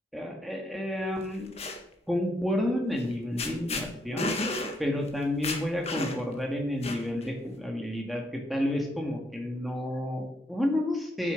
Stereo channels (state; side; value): normal; both; correlation 0.76